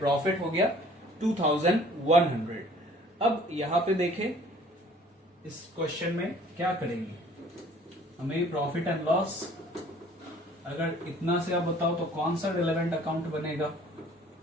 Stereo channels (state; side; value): normal; both; correlation 0.54